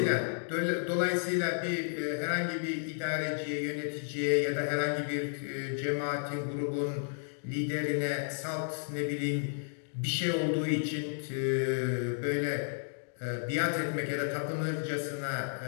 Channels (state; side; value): silent; right; digital silence